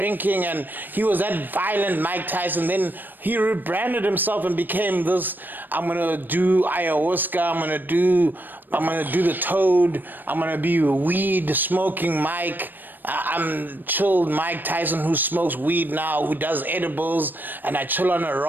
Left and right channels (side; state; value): left; late; 0.091 ms